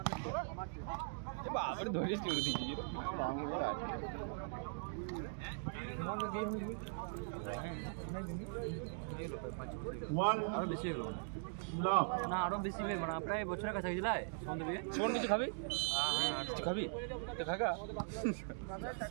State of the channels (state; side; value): silent; left; digital silence